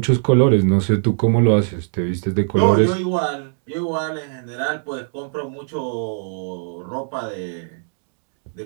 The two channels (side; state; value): left; silent; digital silence